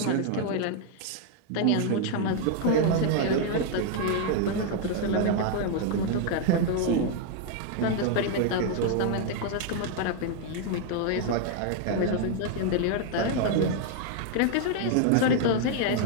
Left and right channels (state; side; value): different; both; correlation 0.00